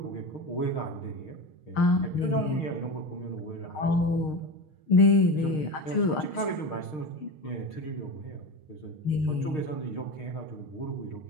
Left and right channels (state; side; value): late; right; 6.5 ms